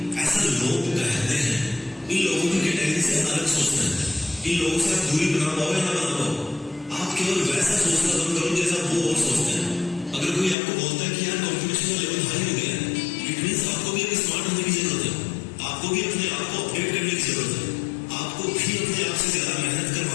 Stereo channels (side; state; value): right; drops out; at 10.6 s